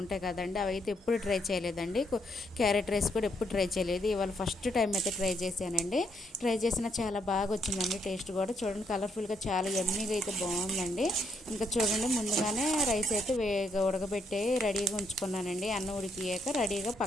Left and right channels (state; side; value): normal; both; correlation 0.75